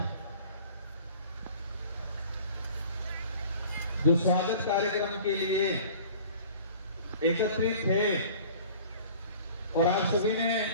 जो स्वागत कार्यक्रम के लिए एकत्रित थे और आप सभी ने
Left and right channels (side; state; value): both; inverted; correlation -0.46